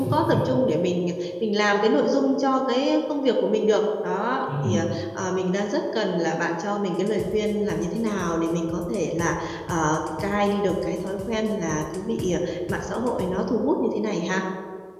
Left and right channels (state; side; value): identical; both; correlation 1.00